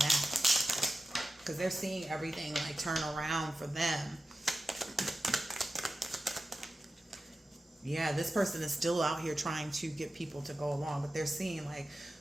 because they're seeing everything like turn around for them. Yeah, this person is still out here trying to get people to go along, but they're seeing like,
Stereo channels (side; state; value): both; normal; correlation 0.93